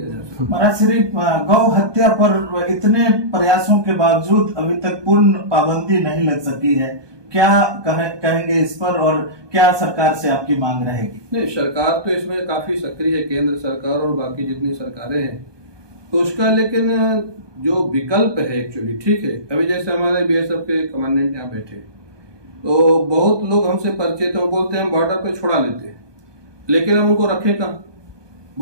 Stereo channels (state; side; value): late; left; 1.2 ms